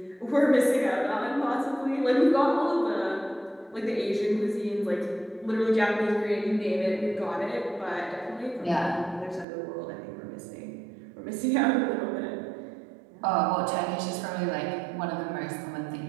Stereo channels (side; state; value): left; drops out; at 9.5 s